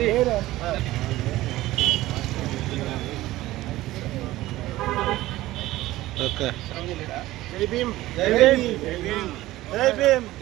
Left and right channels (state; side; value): quieter; left; 16.7 dB